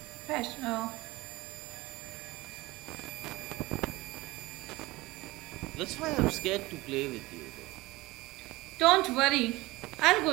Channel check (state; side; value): quieter; left; 20.5 dB